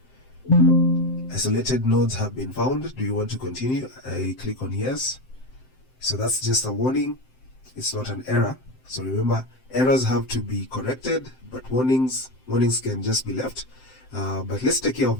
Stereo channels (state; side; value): late; right; 7.7 ms